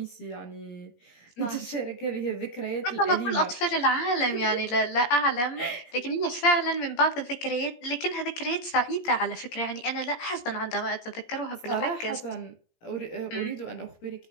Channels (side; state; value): right; late; 17 ms